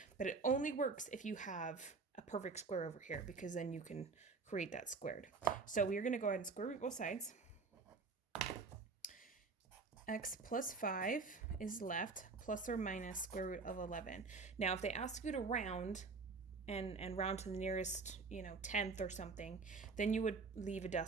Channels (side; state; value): left; quieter; 4.4 dB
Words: But it only works if you have a perfect square over here because then you can create that squared. So we're going to go ahead and square root both sides. X plus 5 is left, plus or minus square root of 11. Now, if they ask you to round and round to the nearest, tenth or something, then you would leave a